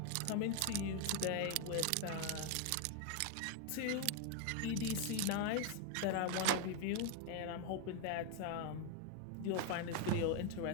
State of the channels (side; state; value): both; different; correlation 0.01